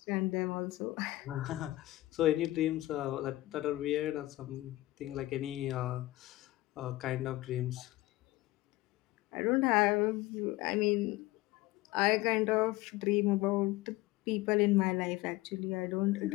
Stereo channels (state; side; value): quieter; right; 18.1 dB